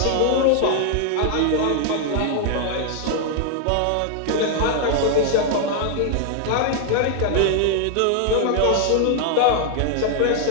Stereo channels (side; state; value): both; different; correlation 0.00